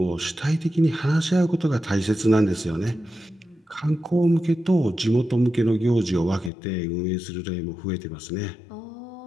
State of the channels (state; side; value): drops out; right; at 6.5 s